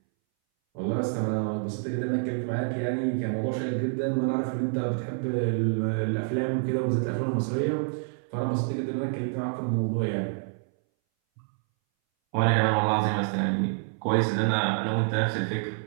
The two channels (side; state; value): left; silent; 60 dB below the other